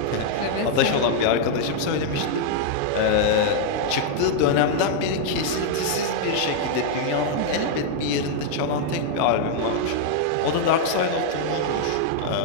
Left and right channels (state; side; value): different; both; correlation -0.01